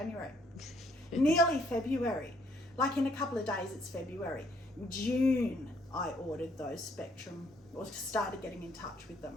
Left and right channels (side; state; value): both; normal; correlation 0.67